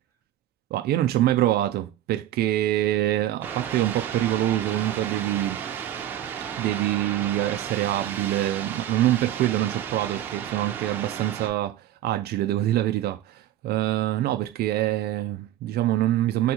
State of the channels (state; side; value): quieter; left; 13.0 dB